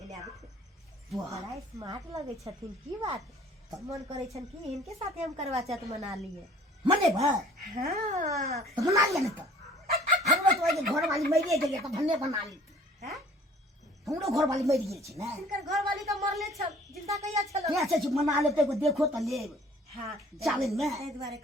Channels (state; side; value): normal; both; correlation 0.52